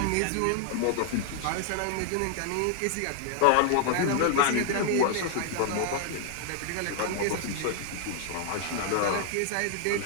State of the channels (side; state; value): both; different; correlation -0.01